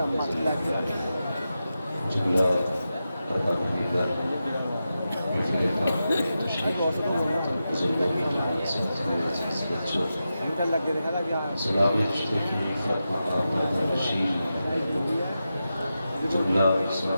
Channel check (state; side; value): inverted; both; correlation -0.90